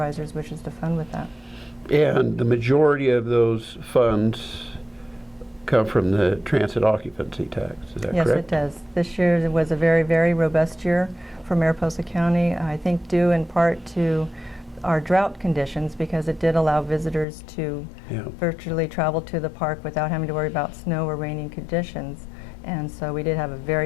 wishes to fund with that. And the majority of those funds come from the transit occupancy tax, is that correct? Yes, it does. This year was a very, very robust year for Mariposa County, I think due in part to our drought conditions, because it did allow visitors to virtually travel to the park without having to worry about snow or raining conditions. And so we did have a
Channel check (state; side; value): drops out; right; at 17.2 s